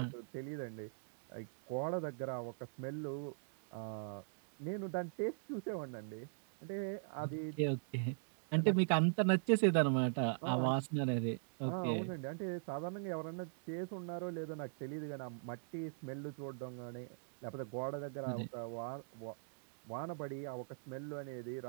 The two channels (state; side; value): silent; left; digital silence